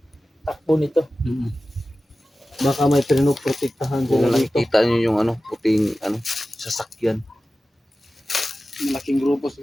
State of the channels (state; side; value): normal; both; correlation 0.95